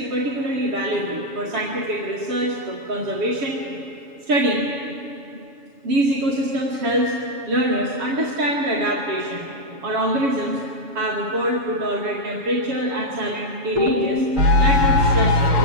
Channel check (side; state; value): left; late; 7.1 ms